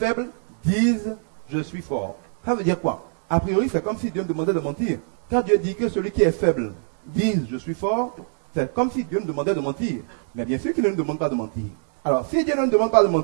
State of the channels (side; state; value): left; silent; digital silence